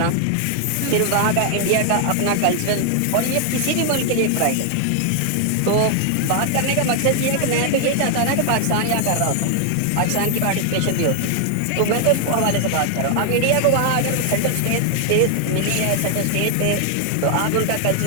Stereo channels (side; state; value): both; different; correlation 0.00